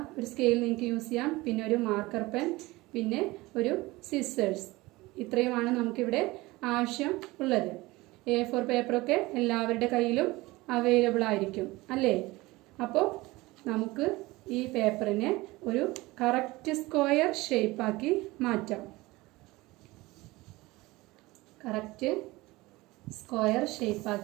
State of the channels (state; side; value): quieter; left; 20.7 dB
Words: ഒരു സ്കെയിൽ നിങ്ങൾക്ക് യൂസ് ചെയ്യാം. പിന്നെ ഒരു മാർക്കർ പെൻ, പിന്നെ ഒരു സിസേഴ്സ്. ഇത്രയുമാണ് നമുക്കിവിടെ ആവശ്യം ഉള്ളത്. A4 പേപ്പറൊക്കെ എല്ലാവരുടെ കയ്യിലും അവൈലബിൾ ആയിരിക്കും അല്ലേ? അപ്പോൾ നമുക്ക് ഈ പേപ്പറിനെ ഒരു കറക്റ്റ് സ്ക്വയർ ഷേപ്പാക്കി മാറ്റാം. കറക്റ്റ് സ്ക്വയർ